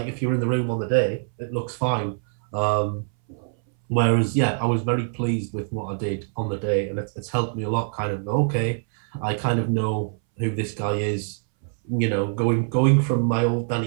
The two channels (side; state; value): left; silent; 60 dB below the other